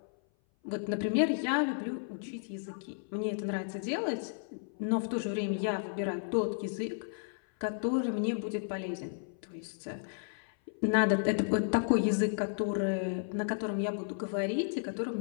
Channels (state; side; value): silent; right; 56 dB below the other